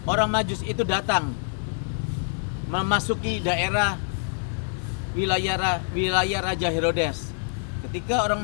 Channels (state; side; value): silent; right; 61 dB below the other